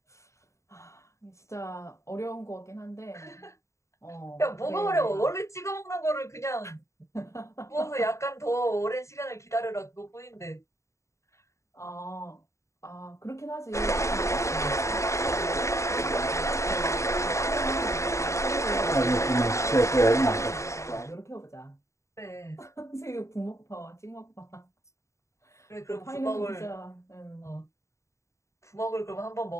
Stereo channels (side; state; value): right; late; 0.14 ms